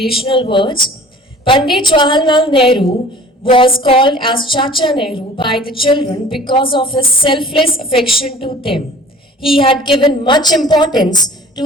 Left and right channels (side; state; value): both; normal; correlation 0.47